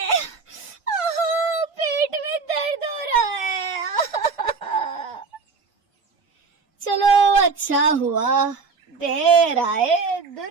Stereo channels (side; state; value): left; quieter; 4.7 dB